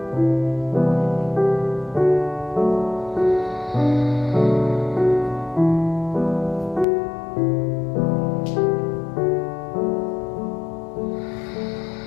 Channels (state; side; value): drops out; right; at 6.9 s